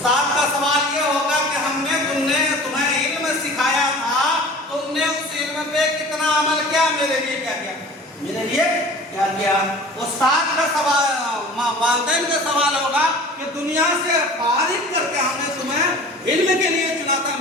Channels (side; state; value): both; normal; correlation 0.42